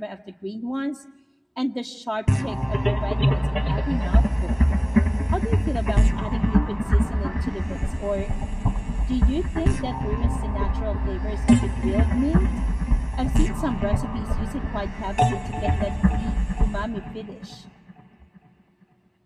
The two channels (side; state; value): both; identical; correlation 1.00